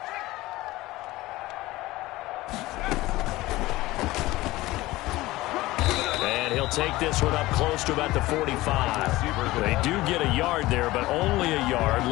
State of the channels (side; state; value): right; quieter; 18.4 dB